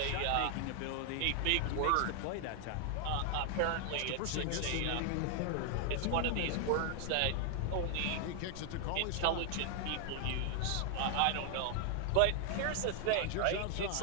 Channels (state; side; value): different; both; correlation 0.00